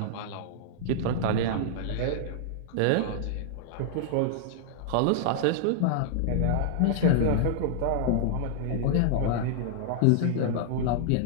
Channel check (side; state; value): both; different; correlation -0.01